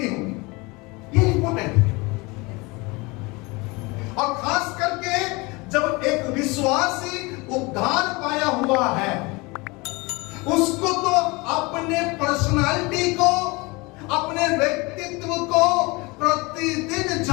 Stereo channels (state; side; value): quieter; right; 25.3 dB